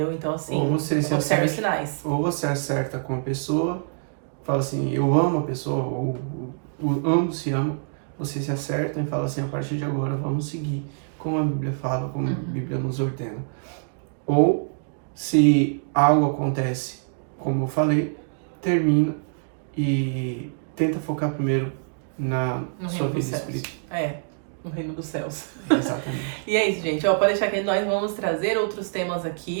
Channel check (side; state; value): left; silent; digital silence